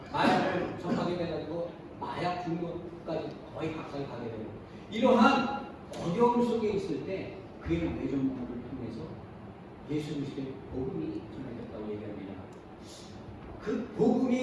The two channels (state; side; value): identical; both; correlation 1.00